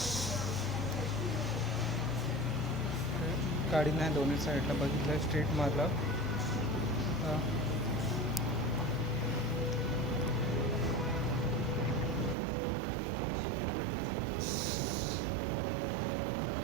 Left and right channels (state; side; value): drops out; left; at 12.4 s